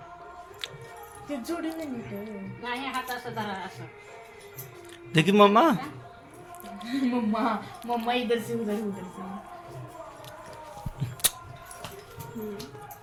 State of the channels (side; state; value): both; identical; correlation 1.00